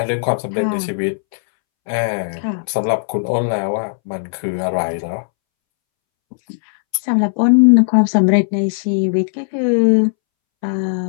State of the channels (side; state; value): right; silent; 67 dB below the other